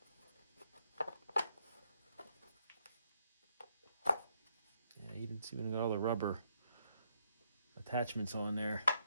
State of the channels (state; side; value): inverted; both; correlation -0.75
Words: Yeah, you didn't see when I got all the rubber attachments on there.